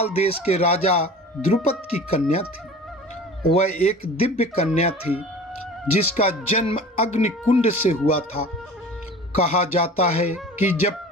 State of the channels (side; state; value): both; normal; correlation 0.40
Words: देश के राजा द्रुपद की कन्या थी। वह एक दिव्य कन्या थी जिसका जन्म अग्निकुंड से हुआ था। कहा जाता है कि जब